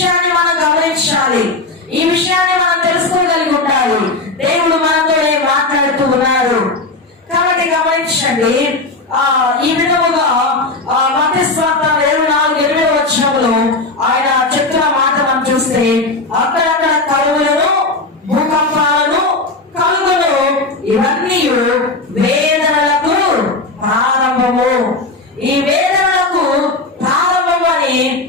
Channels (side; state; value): right; quieter; 3.3 dB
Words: మనం గమనించాలి. ఈ విషయాన్ని మనం తెలుసుకోగలిగి ఉండాలి. దేవుడు మనతో మాట్లాడుతూ ఉన్నారు. కాబట్టి గమనించండి. ఈ విధముగా మత్తయి సువార్త 24:8 వచనంలో ఆయన చెప్తున్న మాట మనం చూస్తే, అక్కడక్కడ కరువులను, భూకంపాలను కలుగును, ఇవన్నీ వేదనలకు ప్రారంభము. ఈ వేదనలకు ప్రారంభము అని